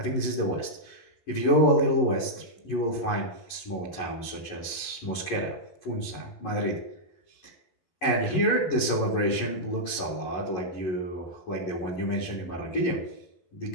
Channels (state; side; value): late; right; 11 ms